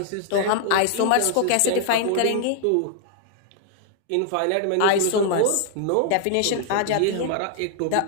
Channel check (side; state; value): both; different; correlation 0.00